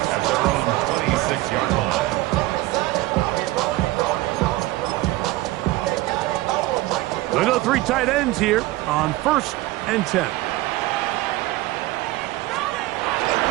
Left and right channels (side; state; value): left; quieter; 18.5 dB